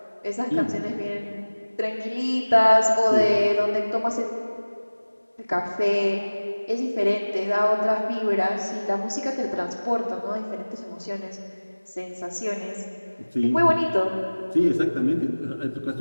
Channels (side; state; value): both; inverted; correlation -1.00